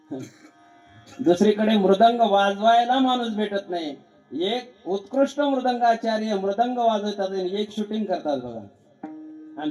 दुसरीकडे मृदंग वाजवायला माणूस भेटत नाही, एक उत्कृष्ट मृदंगाचार्य मृदंग वाजवतात आणि एक शूटिंग करतात बघा.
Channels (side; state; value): both; identical; correlation 1.00